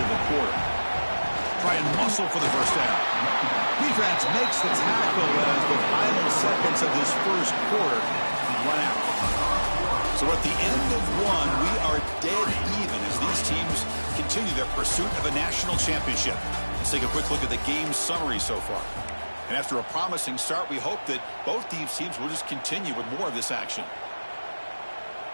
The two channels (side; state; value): both; inverted; correlation -1.00